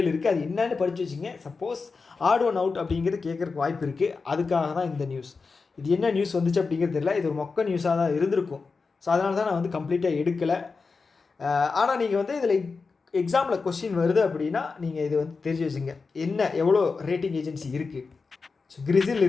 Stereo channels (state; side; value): quieter; right; 4.5 dB